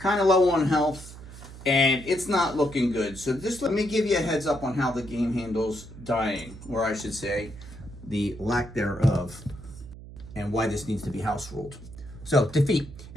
of low on health, and it's not looking good. So just let me give you a heads up on how the game handles dying, or I should say, the lack thereof, and why this needs to be house ruled. So, defeat.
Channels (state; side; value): noise; right; hum, 15 dB below the sound